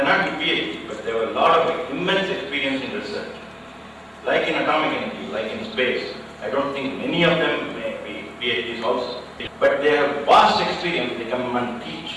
not be PhD, but they have a lot of immense experience in research. Like in atomic energy, like in space, I don't think many of them may be PhDs also. But they have vast experience, they come and teach,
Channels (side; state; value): both; identical; correlation 1.00